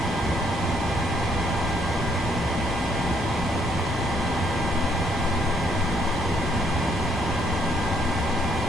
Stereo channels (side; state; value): both; normal; correlation 0.69